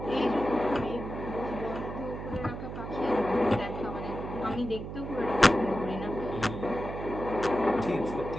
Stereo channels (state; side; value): noise; right; hum, 8 dB below the sound